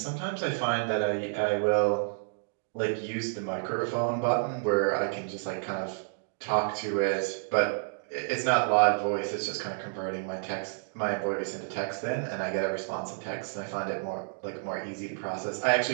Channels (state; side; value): silent; left; digital silence